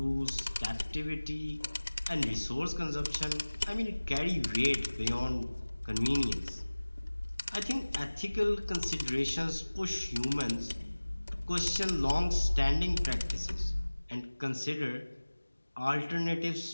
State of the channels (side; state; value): both; inverted; correlation -1.00